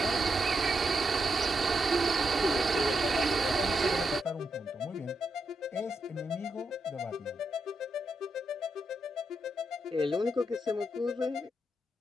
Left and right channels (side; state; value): both; normal; correlation 0.83